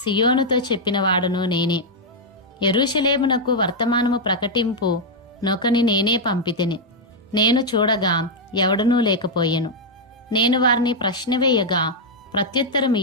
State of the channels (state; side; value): normal; both; correlation -0.02